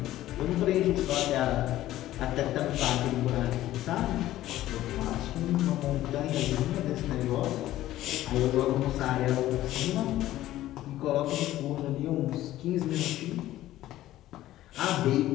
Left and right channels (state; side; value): quieter; right; 14.5 dB